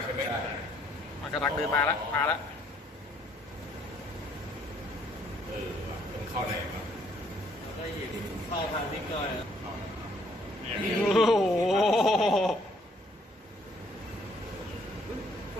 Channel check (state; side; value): normal; both; correlation 0.66